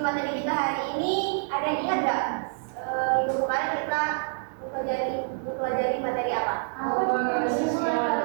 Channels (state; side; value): silent; left; digital silence